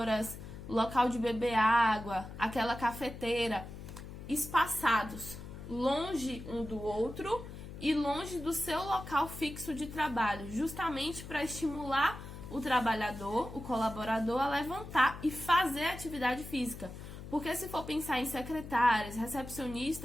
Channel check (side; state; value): left; noise; hum, 12 dB below the sound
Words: local de beber água, aquela cafeteira, espaçados, longe um do outro e longe do seu local fixo de trabalho, justamente para estimular o trabalhador, o colaborador, a levantar e fazer atividade física. Porque se for pensar em secretárias,